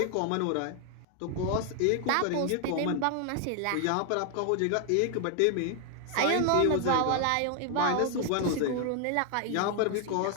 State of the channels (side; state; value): both; different; correlation 0.00